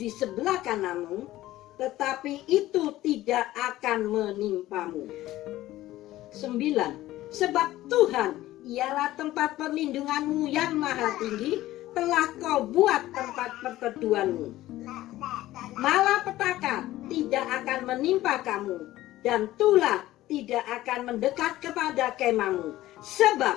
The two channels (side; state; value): right; quieter; 15.7 dB